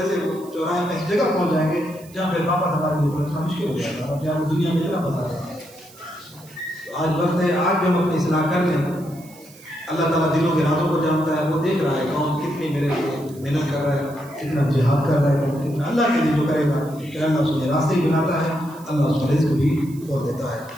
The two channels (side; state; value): right; noise; hiss, 23 dB below the sound